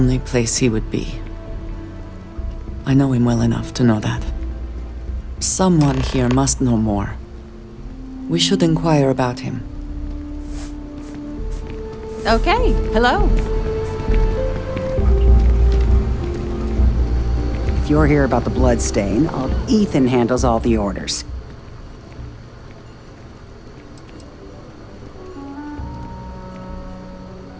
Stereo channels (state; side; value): identical; both; correlation 1.00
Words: place he would be. I know him well enough to know that. Someone here must know more. We should inquire about him. Okay, hello. If you're here about the blood stain, Ethan handles all the orders.